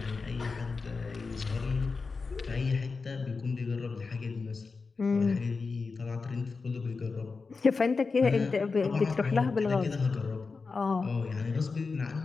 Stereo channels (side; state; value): right; quieter; 4.4 dB